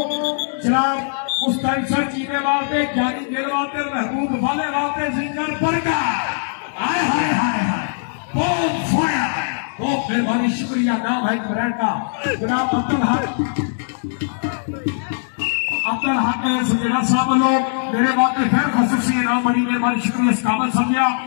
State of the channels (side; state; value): right; silent; digital silence